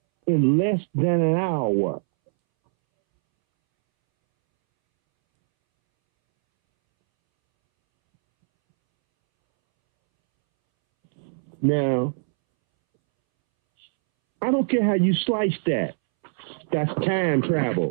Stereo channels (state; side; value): silent; left; 64 dB below the other